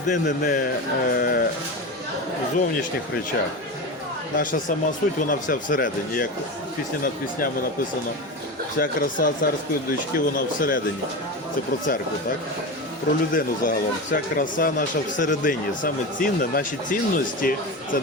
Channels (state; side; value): normal; both; correlation 0.23